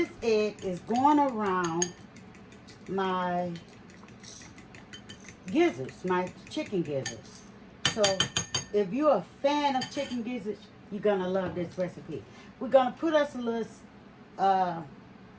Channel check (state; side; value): identical; both; correlation 1.00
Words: egg is going around my gizzards, my chicken gizzards. So if you're a fan of chicken gizzards, you're gonna love this recipe. We're gonna put us a little